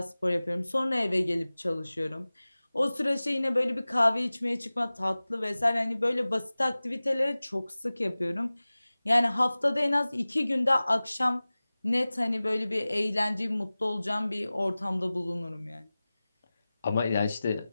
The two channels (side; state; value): both; inverted; correlation -0.98